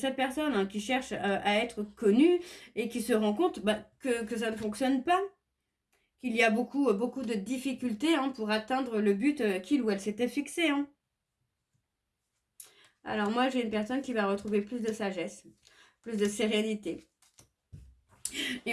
personne qui cherche à être connue et qui se rend compte que ça ne fonctionne pas. Qu'il y a beaucoup de difficultés pour atteindre le but qu'il ou elle s'était fixé. Alors moi, j'ai une personne qui va retrouver plus de sagesse, plus de sérénité.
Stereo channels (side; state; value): both; identical; correlation 1.00